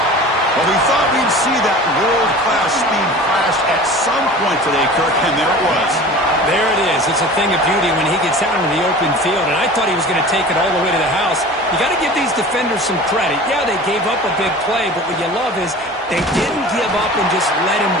Well, we thought we'd see that world-class speed flash at some point today, Kirk, and there it was. There it is. It's a thing of beauty when he gets out into the open field, and I thought he was going to take it all the way to the house. You got to give these defenders some credit. Yeah, they gave up a big play, but what you love is they didn't give up and just let him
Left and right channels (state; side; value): normal; both; correlation 0.39